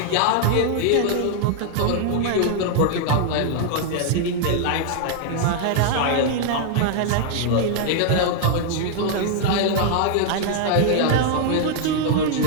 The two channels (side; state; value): both; different; correlation 0.00